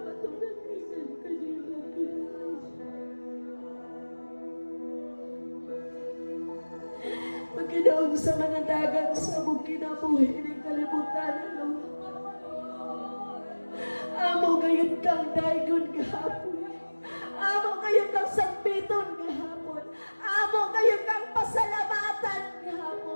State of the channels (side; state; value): both; inverted; correlation -1.00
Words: kanino, Ginoo. Maginaong sa mga dagat sa mong kinabuhi ng kalibutan, Lord. Amo gayon kang daygon gahapon. Amo gayon kang sambiton gahapon. Amo gayon kang pasalamatan